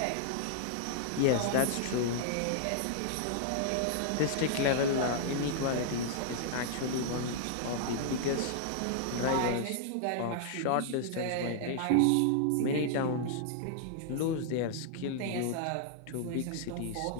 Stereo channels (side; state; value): both; different; correlation -0.01